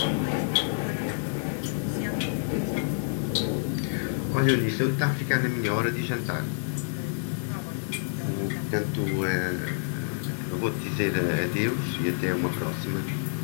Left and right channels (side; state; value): right; silent; 59 dB below the other